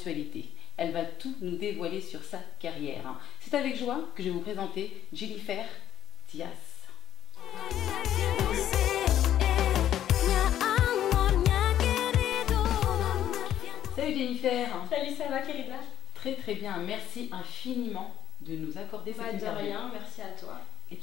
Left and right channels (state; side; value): quieter; right; 11.3 dB